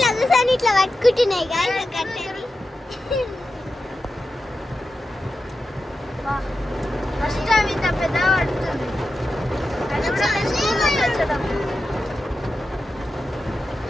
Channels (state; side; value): normal; both; correlation 0.91